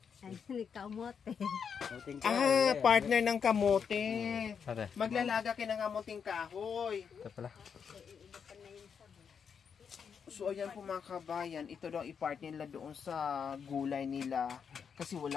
Ay, kamote. Partner ng kamote. Maglalaga kayo ng kamuting kahoy. Ito pala. So ayan po mga kabayan, ito daw i-part nila doon sa gulay nila kasi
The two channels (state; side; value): quieter; right; 6.8 dB